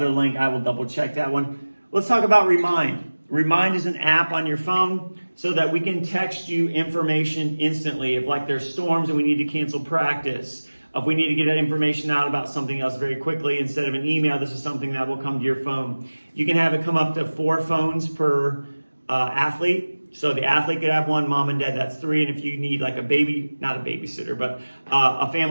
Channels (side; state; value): both; inverted; correlation -1.00